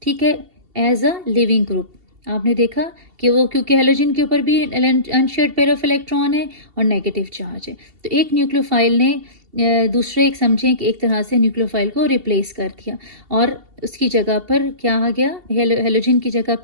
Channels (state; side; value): late; left; 2.7 ms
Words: ठीक है, एज अ लिविंग ग्रुप. आपने देखा कि वो, क्योंकि हेलोजन के ऊपर भी अनशेयर्ड पेयर ऑफ इलेक्ट्रॉन है और नेगेटिव चार्ज है, तो एक न्यूक्लियोफाइल ने दूसरे एक समझें कि एक तरह से न्यूक्लियोफाइल को रिप्लेस कर दिया, और उसकी जगह पर क्या आ गया? हेलोजन की जगह